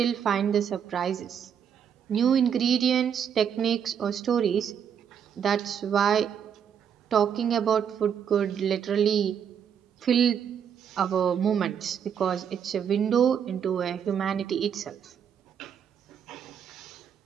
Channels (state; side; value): quieter; left; 8.1 dB